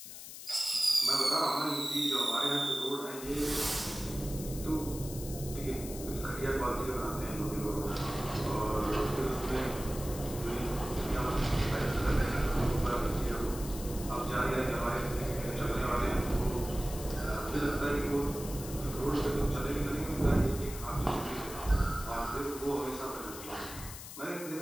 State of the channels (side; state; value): left; noise; hiss, 12 dB below the sound